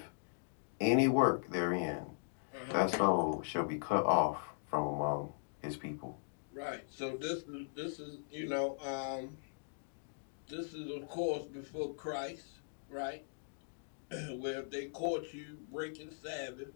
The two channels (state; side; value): silent; right; digital silence